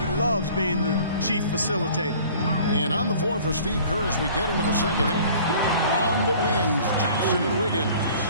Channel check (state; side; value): inverted; both; correlation -0.49